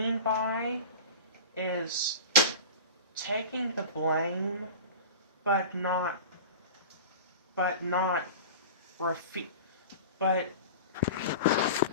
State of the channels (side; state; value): both; inverted; correlation -0.34